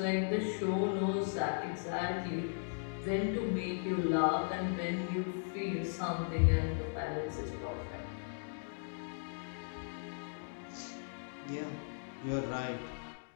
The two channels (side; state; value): right; silent; digital silence